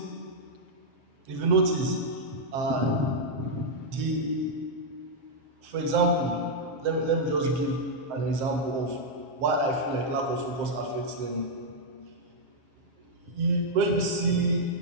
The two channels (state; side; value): late; left; 7.7 ms